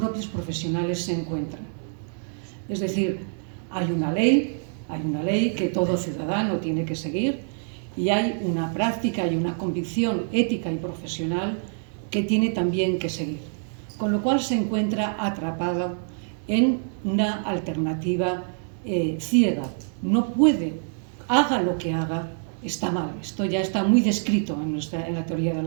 profesionales se encuentran. Es decir, hay una ley que todo ciudadano tiene que seguir y hay una práctica y una convicción ética y profesional que tiene también que seguir, con lo cual se encuentra atrapado en una alternativa ciega. No puede, haga lo que haga, está mal. Esto ya está muy descrito en la teoría de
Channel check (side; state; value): left; silent; digital silence